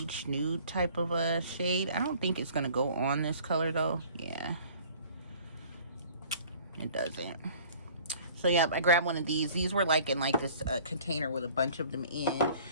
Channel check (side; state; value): both; inverted; correlation -0.51